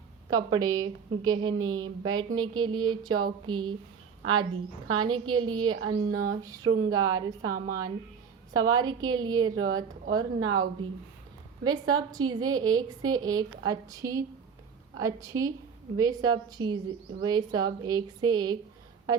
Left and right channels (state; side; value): quieter; left; 6.4 dB